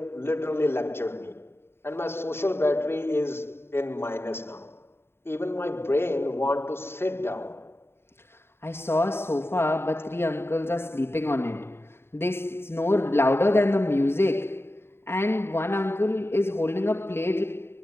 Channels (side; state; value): right; late; 0.11 ms